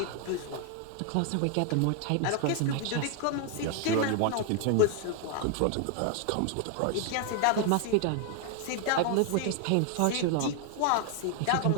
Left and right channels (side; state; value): both; different; correlation 0.00